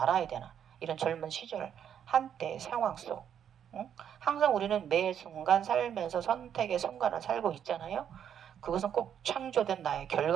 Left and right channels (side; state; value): left; quieter; 8.9 dB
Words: 되나? 이런 젊은 시절 한때 상황 속. 응? 항상 우리는 매 순간 살면서 선택의 순간을 살고 있잖아요. 그것은 꼭 창조된 나의